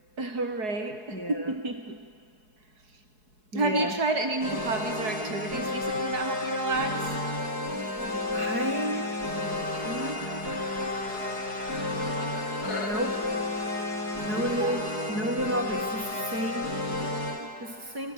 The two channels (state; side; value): late; left; 4.7 ms